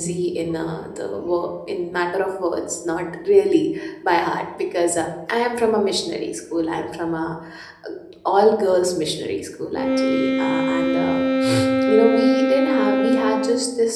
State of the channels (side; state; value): both; identical; correlation 1.00